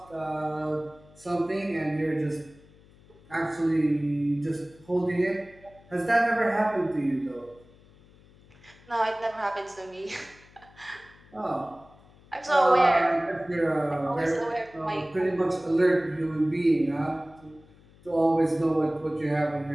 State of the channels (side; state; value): left; noise; hum, 26 dB below the sound